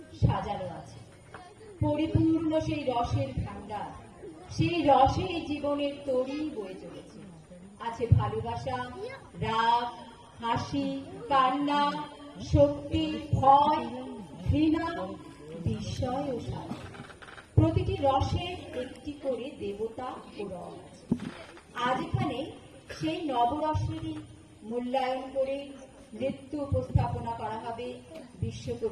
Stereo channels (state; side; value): identical; both; correlation 1.00